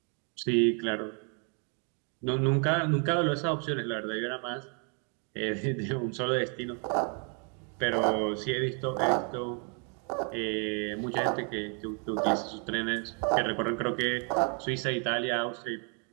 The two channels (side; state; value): left; quieter; 39.3 dB